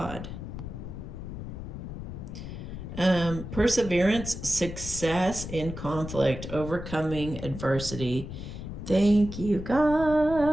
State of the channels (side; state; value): left; noise; rumble, 9 dB below the sound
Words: Perseverance, success in conflict, overcoming adversity. Thank you,